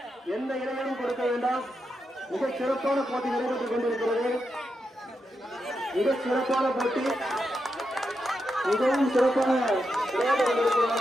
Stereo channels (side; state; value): both; normal; correlation 0.86